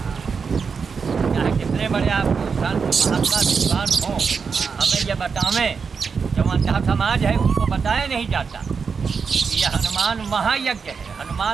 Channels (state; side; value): quieter; left; 5.6 dB